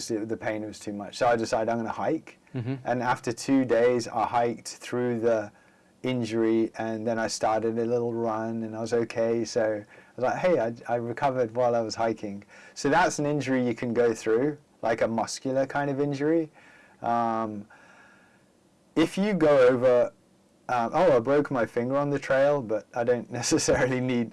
pain was too much. So I decided I'm going to hike. And after 2 days, I hiked through the injury, and then I started a little run, and I was okay. So I was like, hey, I recovered while I was hiking. So that's an injury you can go through, like a muscular kind of injury. If you go over, I broke my finger on the trail, but I don't necessarily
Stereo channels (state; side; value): identical; both; correlation 1.00